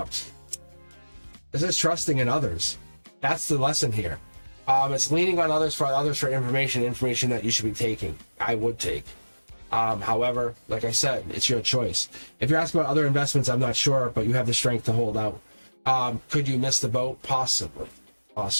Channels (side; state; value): both; inverted; correlation -1.00